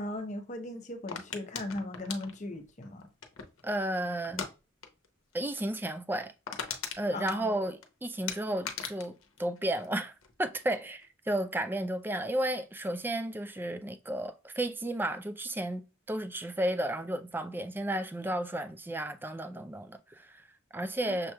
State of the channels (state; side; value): normal; both; correlation 0.70